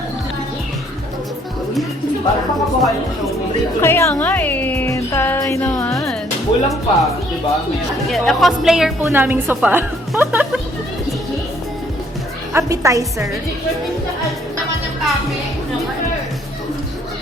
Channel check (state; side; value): normal; both; correlation 0.64